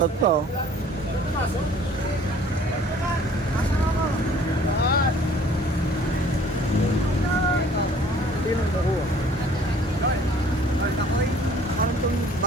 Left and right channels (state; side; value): normal; both; correlation 0.54